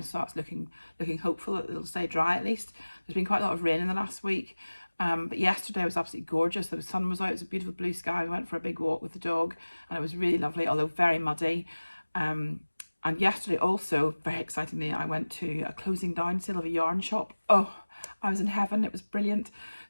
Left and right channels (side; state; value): both; inverted; correlation -1.00